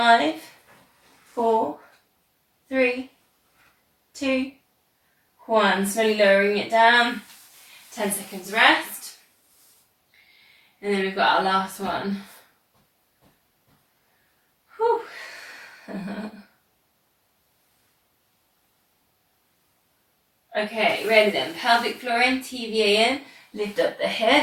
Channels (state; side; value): identical; both; correlation 1.00